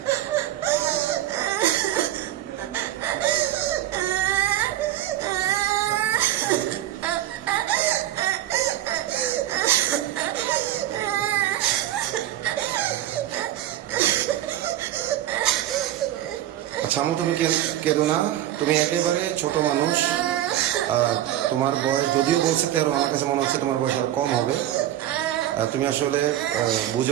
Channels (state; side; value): quieter; left; 12.9 dB